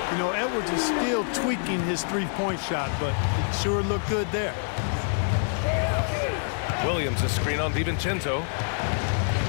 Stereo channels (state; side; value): silent; right; 61 dB below the other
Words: You know, Edwards is still tweaking his three-point shot, but it sure looked good there. Williams, a screen on DiVincenzo.